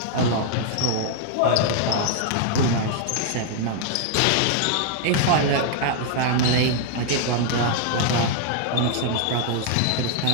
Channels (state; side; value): different; both; correlation 0.00